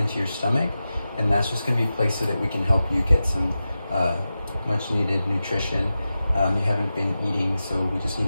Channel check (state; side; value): inverted; both; correlation -0.93